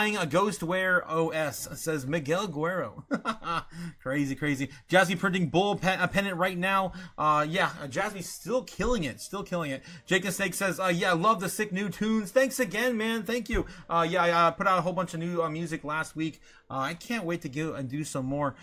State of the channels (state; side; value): identical; both; correlation 1.00